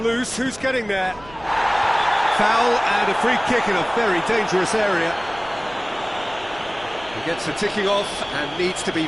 who's getting there? Foul and a free kick in a very dangerous area. He gets a ticking off and needs to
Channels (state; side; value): noise; right; rumble, 21 dB below the sound